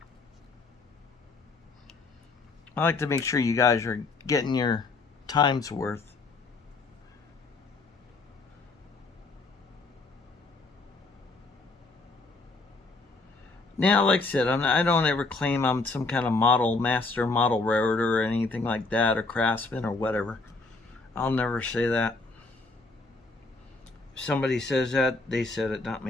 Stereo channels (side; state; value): right; quieter; 3.7 dB